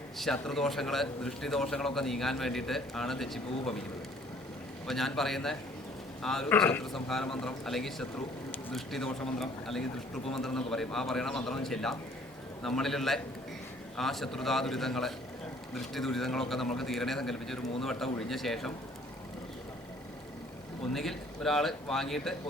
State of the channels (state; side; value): normal; both; correlation 0.57